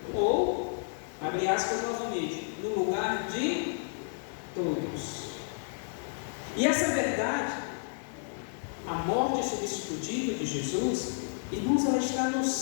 ou, abre aspas novamente, no lugar de todos. E essa verdade, a morte substitutiva de Jesus, irmãos, ela está no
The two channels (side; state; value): right; silent; digital silence